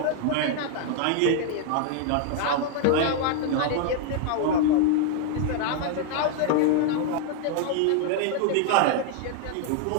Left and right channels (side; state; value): both; different; correlation 0.00